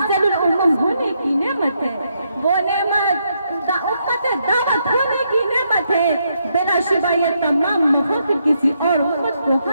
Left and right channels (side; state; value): both; inverted; correlation -0.78